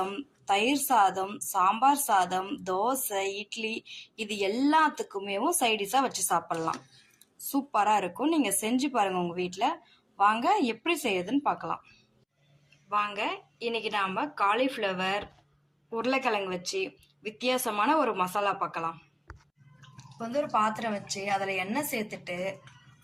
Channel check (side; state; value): both; identical; correlation 1.00